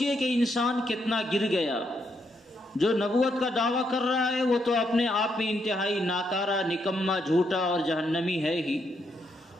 کہ انسان کتنا گر گیا۔ جو نبوت کا دعویٰ کر رہا ہے وہ تو اپنے آپ میں انتہائی ناکارہ، نکما، جھوٹا اور جہنمی ہے ہی۔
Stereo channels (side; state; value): both; normal; correlation 0.77